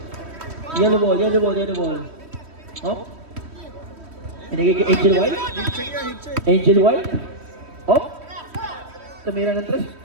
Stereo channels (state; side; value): late; left; 3.1 ms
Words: Yellow ball. Hop. Binigay kay Angel Wild. Angel Wild. Hop. Tumira ng 3.